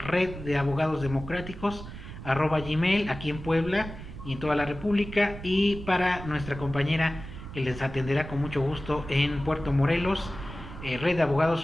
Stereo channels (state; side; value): noise; right; rumble, 12 dB below the sound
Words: aquí en Puebla y en toda la República, y para nuestra compañera que les atenderá con mucho gusto en Puerto Morelos,